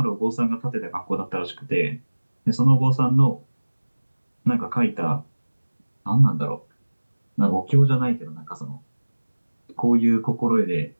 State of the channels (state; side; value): inverted; both; correlation -1.00